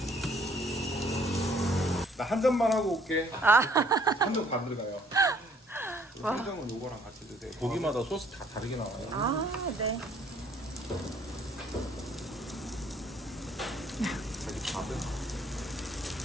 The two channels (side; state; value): both; normal; correlation 0.61